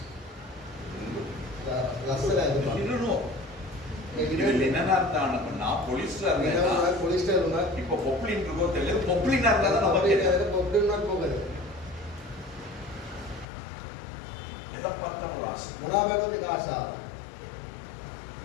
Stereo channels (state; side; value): drops out; right; at 13.5 s